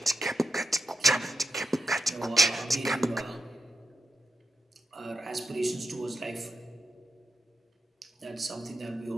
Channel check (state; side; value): normal; both; correlation 0.87